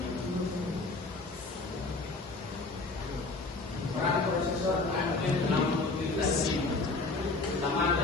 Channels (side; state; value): right; quieter; 3.5 dB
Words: Peran prosesor AMD dalam mengikuti tes ini. Pertama